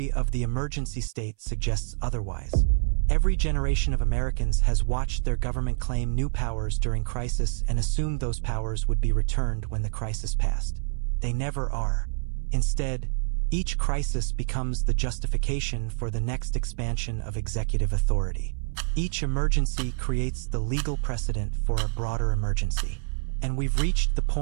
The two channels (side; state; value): left; silent; 59 dB below the other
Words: of the emergency state suggests otherwise. Every generation of Americans has watched their government claim new powers during crisis and assumed those powers would be returned when the crisis passed. They never are. Instead, each crisis becomes the justification for the next expansion of executive authority. Each emergency creates the legal precedent for a broader emergency. And we've reached the